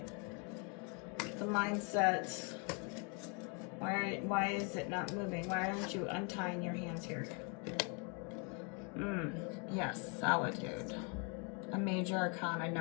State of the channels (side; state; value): right; quieter; 35.1 dB